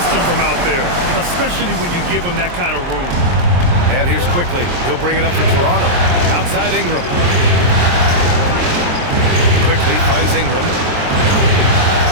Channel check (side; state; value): left; late; 23 ms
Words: from out there, especially when you give him that kind of room. And here's Quickly. He'll bring it up for Toronto. Outside Ingram. Quickly finds Ingram.